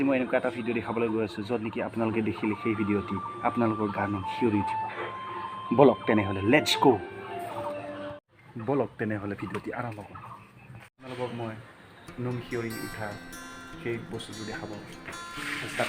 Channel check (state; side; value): identical; both; correlation 1.00